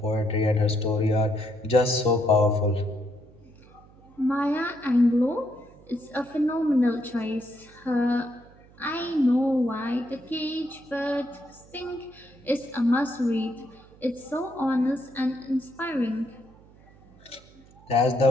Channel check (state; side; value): noise; right; hum, 25 dB below the sound